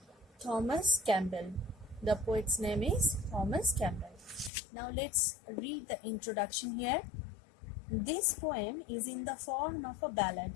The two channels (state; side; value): drops out; right; at 4.5 s